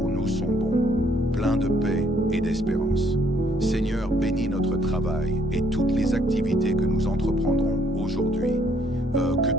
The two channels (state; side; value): normal; both; correlation 0.66